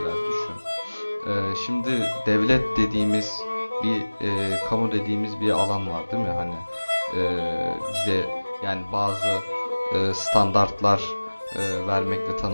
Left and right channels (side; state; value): both; inverted; correlation -1.00